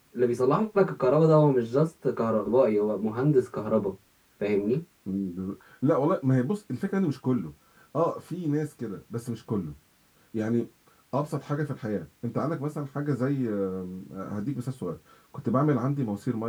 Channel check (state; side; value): identical; both; correlation 1.00